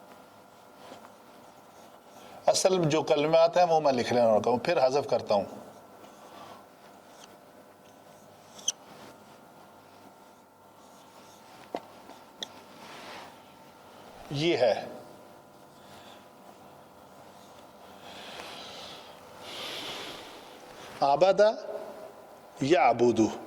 اصل جو کلمات ہیں وہ میں لکھ لینا ہوتا ہوں، پھر حذف کرتا ہوں. یہ ہے عبادہ یعبدو.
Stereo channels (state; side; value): identical; both; correlation 1.00